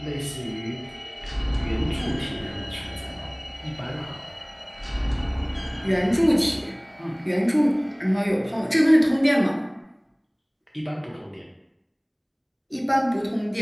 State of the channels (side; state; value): both; identical; correlation 1.00